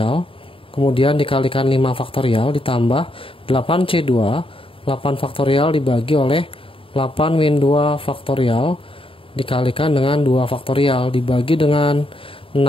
kemudian dikalikan 5 faktorial ditambah 8C2, 8 faktorial dibagi oleh 8 min 2 faktorial, dikalikan dengan 2 faktorial, dibagi dengan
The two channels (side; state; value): right; late; 0.26 ms